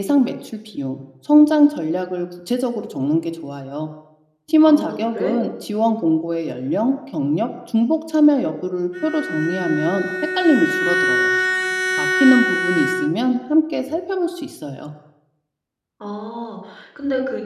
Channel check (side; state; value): both; identical; correlation 1.00